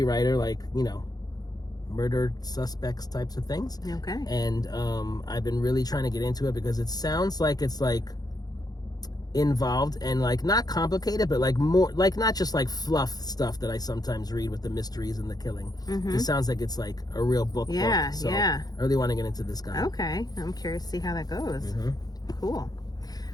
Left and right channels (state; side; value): late; right; 0.19 ms